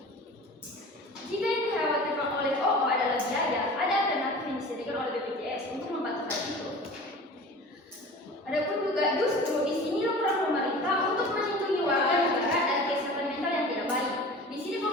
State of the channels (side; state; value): both; normal; correlation 0.39